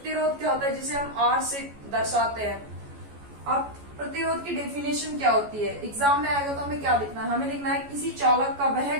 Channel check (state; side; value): late; left; 14 ms